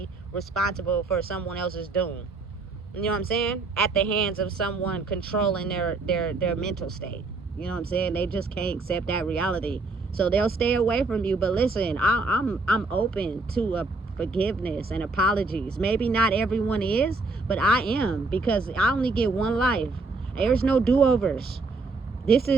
responsible for someone else's doom. You know what I'm saying? At the hands of someone controlling their mental state. You know what I'm saying? They just can't accept that reality. So they'll stay away from you. But listen, I'm open to forgiveness and apologies. Maybe not everyone is, but I am, because I only get one life. There's no do-overs. This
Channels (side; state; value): left; quieter; 3.6 dB